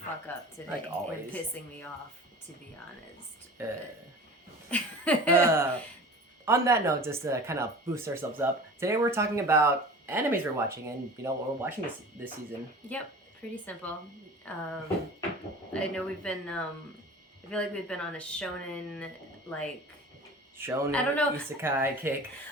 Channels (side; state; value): both; normal; correlation 0.39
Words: up today. Like always. And pissing me off, to be honest. On that note, just to kind of boost ourselves up, today we're talking about animes we're watching, and what we're watching this season. Yep, pretty simple. I know we've been, I feel like we've been on a shonen, Shonen, I don't know. isekai kick.